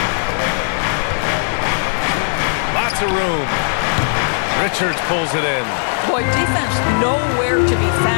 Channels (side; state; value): right; silent; digital silence